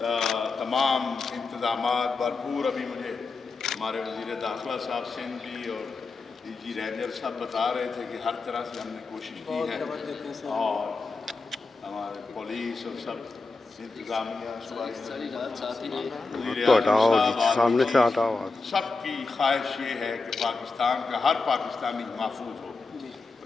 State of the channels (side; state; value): right; quieter; 3.9 dB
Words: تمام انتظامات بھرپور، ابھی مجھے ہمارے وزیر داخلہ صاحب سندھ بھی اور ڈی جی رینجر صاحب بتا رہے تھے کہ ہر طرح سے ہم نے کوشش کی ہے، اور ہمارے پولیس اور سب انتظامیہ تو ہٹاؤ جی، سامنے سے ہٹاؤ۔ سب کی خواہش یہ ہے کہ پاکستان کا ہر پاکستانی محفوظ ہو،